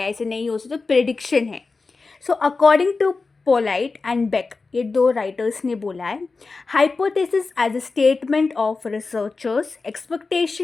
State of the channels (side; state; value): right; quieter; 4.1 dB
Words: ऐसे नहीं हो सकता, तो प्रेडिक्शन है। So according to Polit and Beck, ये दो राइटर्स ने बोला है, hypothesis as a statement of researchers